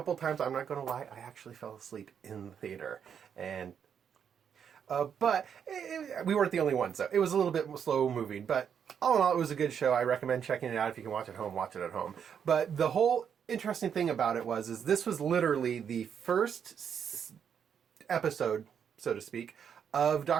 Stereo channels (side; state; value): left; quieter; 7.8 dB